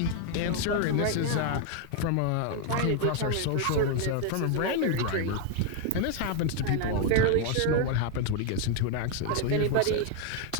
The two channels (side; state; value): both; different; correlation 0.01